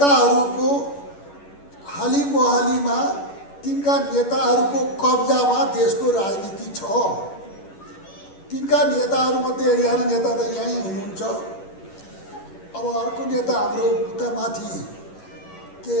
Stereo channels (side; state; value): right; late; 11 ms